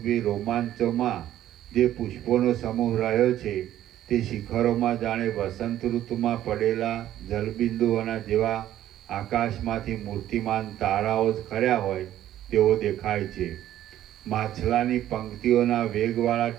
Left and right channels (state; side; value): quieter; left; 12.5 dB